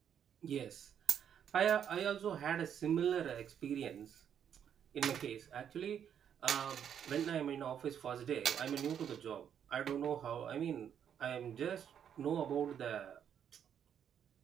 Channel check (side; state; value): left; quieter; 8.7 dB